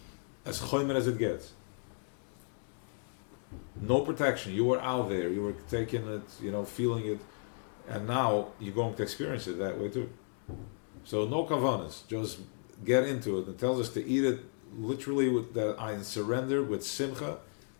as choimer as it gets. No protection. You were out there. You were taking it, feeling it, and now you're going to experience it that way too. So no kavanas. Just get into it. It tells us to eat it literally with that I surrender with simcha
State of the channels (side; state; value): right; silent; 55 dB below the other